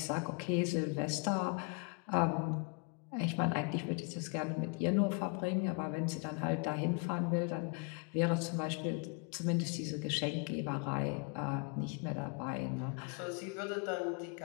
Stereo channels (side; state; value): right; quieter; 34.5 dB